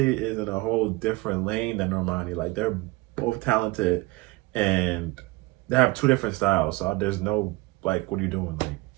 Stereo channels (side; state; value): left; quieter; 21.7 dB